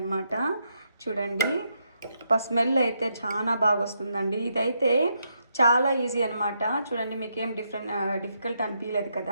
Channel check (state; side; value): inverted; both; correlation -0.80